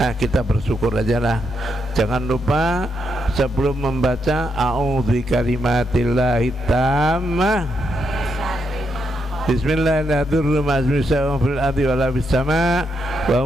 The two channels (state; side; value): normal; both; correlation 0.80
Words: Nah, kita bersyukur aja lah. Jangan lupa sebelum membaca a'udzu bikalimatillahi tammah, bismillahirrahmanirrahim, wa